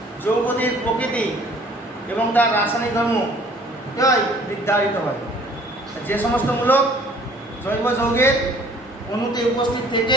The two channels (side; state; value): both; normal; correlation 0.54